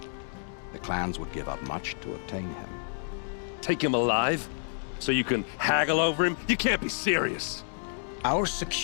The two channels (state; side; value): silent; right; digital silence